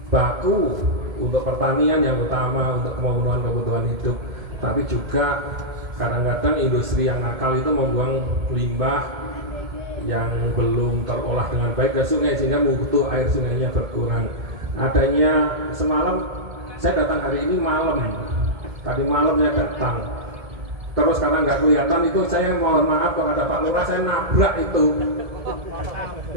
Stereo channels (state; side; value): late; left; 1.7 ms